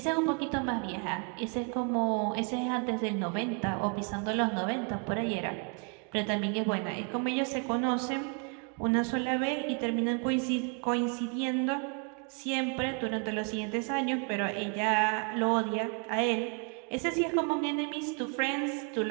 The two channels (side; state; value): left; quieter; 37.9 dB